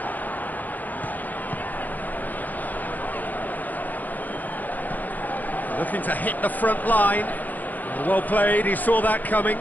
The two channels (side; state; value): right; late; 0.083 ms